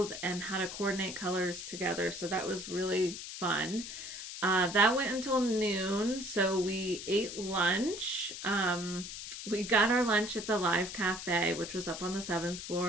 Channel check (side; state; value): left; noise; hiss, 9 dB below the sound